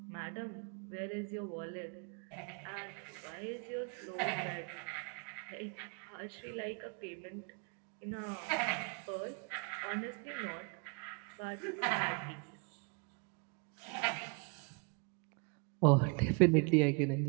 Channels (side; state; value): left; quieter; 33.9 dB